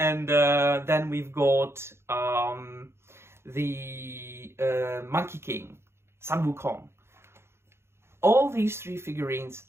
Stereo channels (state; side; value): late; left; 0.12 ms